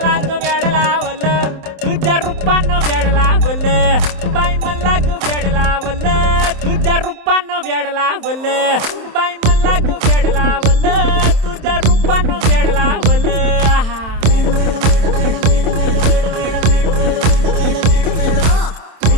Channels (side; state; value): left; late; 27 ms